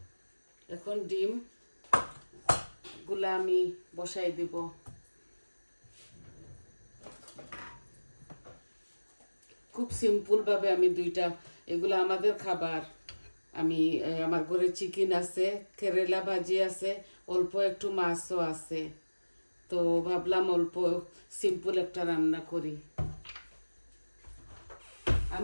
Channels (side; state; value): both; inverted; correlation -1.00